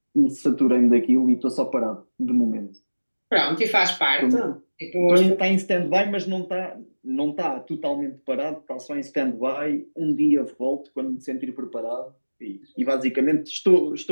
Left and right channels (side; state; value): both; inverted; correlation -1.00